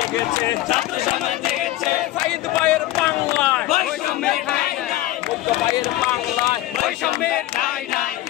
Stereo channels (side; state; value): right; quieter; 15.8 dB